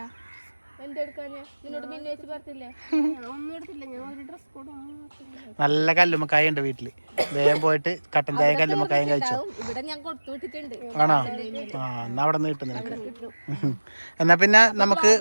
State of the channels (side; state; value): both; inverted; correlation -1.00